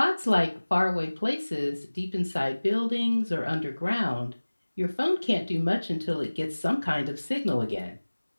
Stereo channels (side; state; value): both; inverted; correlation -1.00